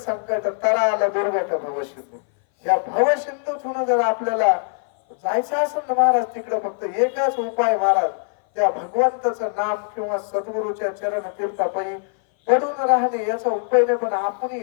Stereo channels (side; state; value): right; silent; 59 dB below the other